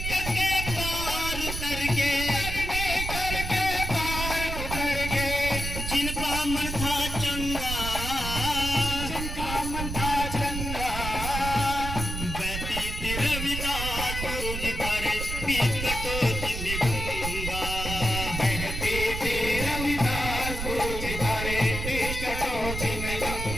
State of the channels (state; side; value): noise; right; rumble, 5 dB below the sound